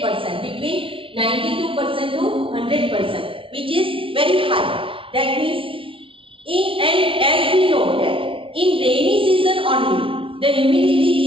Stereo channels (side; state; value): left; late; 0.25 ms